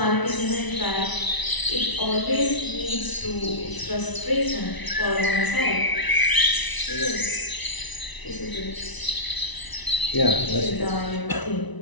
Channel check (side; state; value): right; late; 1.0 ms